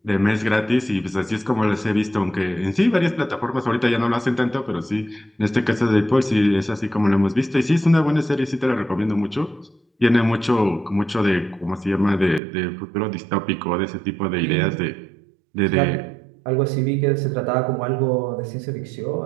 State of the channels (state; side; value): drops out; left; at 12.4 s